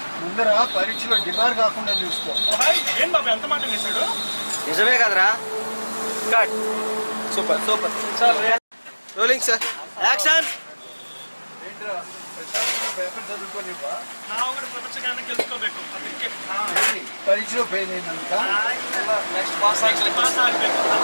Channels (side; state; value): both; inverted; correlation -1.00